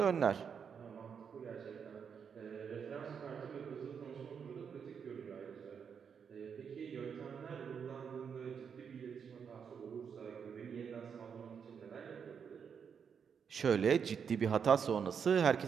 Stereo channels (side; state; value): left; quieter; 6.9 dB